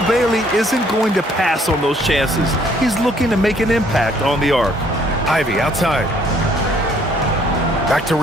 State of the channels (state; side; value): normal; both; correlation 0.63